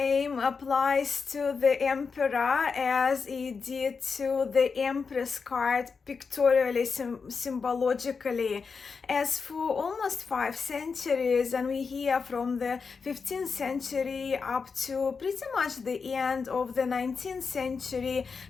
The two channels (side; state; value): right; quieter; 5.2 dB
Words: applies to the Emperor as it did to the Empress card pictorially, symbologically. As for almost 5 centuries, and we hear from the 15th century up to pretty much the end of the 19th century,